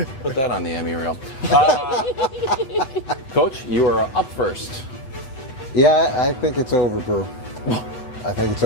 Put that on the Emmy reel. Coach, you are up first. Yeah, I think it's over, Brew. I think it's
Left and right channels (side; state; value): right; late; 7.8 ms